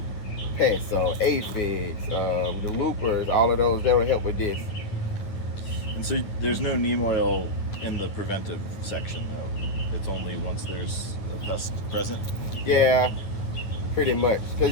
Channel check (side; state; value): right; late; 10 ms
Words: pests, so aphids, the loopers, all of those, they will help with this. And so there's no neem oil in the preventive section, though. It's only once there's a pest present. Yeah, pretty much.